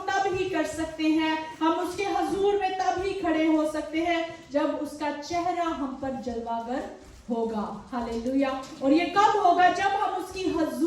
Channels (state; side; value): identical; both; correlation 1.00